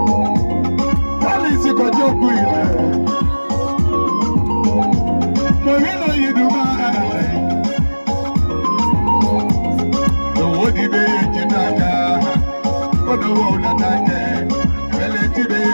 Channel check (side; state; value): both; inverted; correlation -1.00